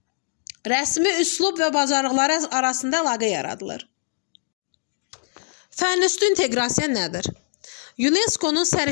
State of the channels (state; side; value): silent; right; digital silence